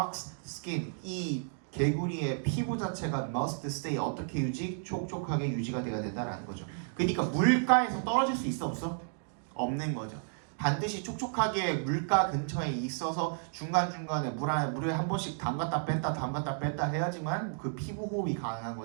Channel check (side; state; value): left; silent; digital silence